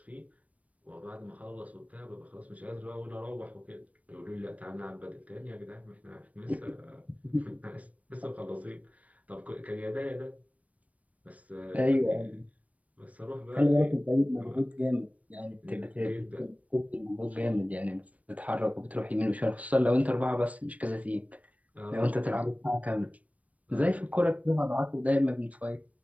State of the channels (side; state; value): left; late; 0.068 ms